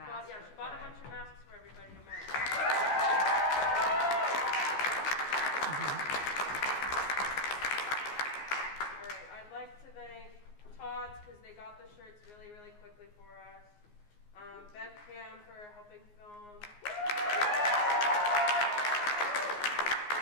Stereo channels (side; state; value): right; late; 14 ms